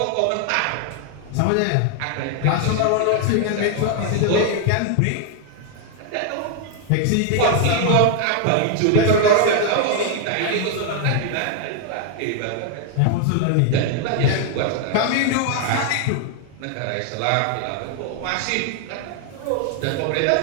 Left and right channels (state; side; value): different; both; correlation 0.00